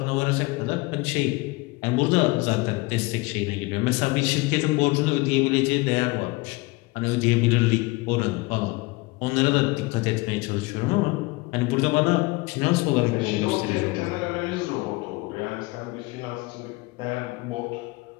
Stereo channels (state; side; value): quieter; right; 23.9 dB